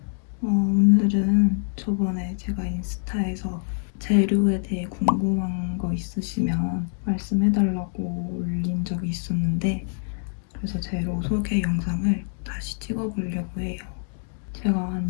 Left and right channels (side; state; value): right; silent; 62 dB below the other